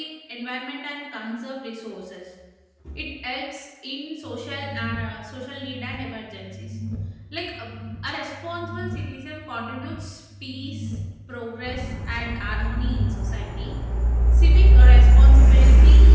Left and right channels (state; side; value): identical; both; correlation 1.00